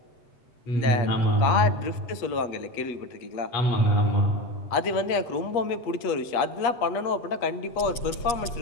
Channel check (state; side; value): late; right; 8.3 ms